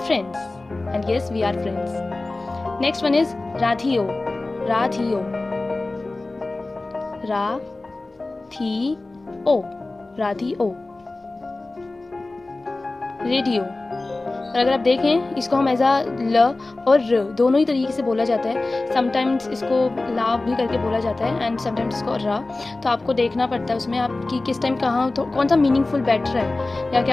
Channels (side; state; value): right; quieter; 3.1 dB